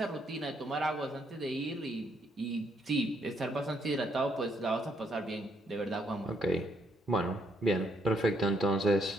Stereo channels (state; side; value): normal; both; correlation 0.72